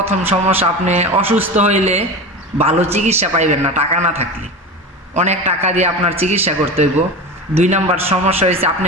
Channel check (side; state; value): both; normal; correlation 0.27